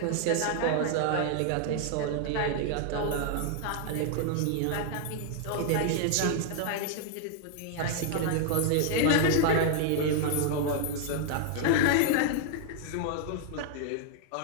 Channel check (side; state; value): both; different; correlation 0.00